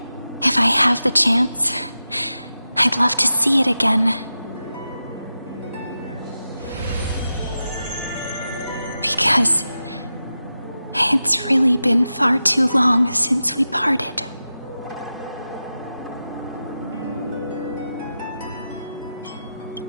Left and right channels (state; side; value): inverted; both; correlation -0.91